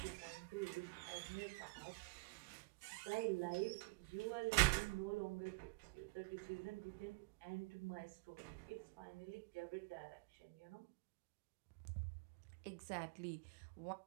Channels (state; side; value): quieter; left; 28.5 dB